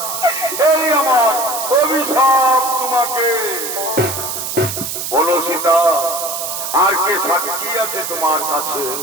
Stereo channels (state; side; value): noise; right; hiss, 5 dB below the sound